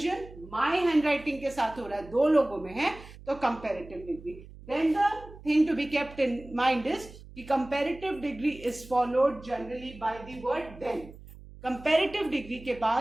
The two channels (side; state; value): right; noise; hum, 18 dB below the sound